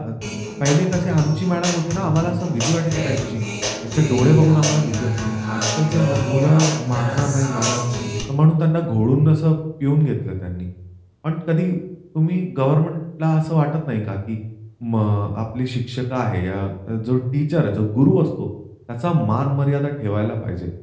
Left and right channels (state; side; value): identical; both; correlation 1.00